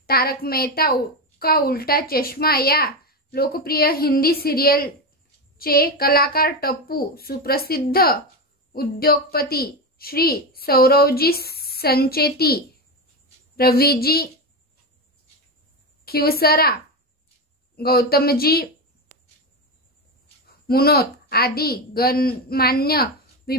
तारक मेहता का उल्टा चष्मा या लोकप्रिय हिंदी सिरियलचे कलाकार टप्पू, सुप्रसिद्ध उद्योगपती श्री सौरवजी संचेती, रवीजी खिवसरा, गौतमजी मुनोत आदी गणमान्य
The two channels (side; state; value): both; normal; correlation 0.15